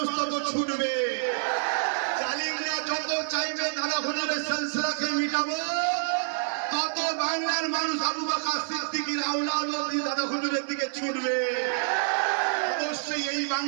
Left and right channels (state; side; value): silent; left; 55 dB below the other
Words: তত ছুটবে। জালিমরা যত চাইবে দাদা হুজুরের সিলসিলাকে মিটাবো, তত বাংলার মানুষ আবু বকর সিদ্দিকীর আওলাদ দাদা হুজুরের দিকে ছুটবে। অবশ্যই এই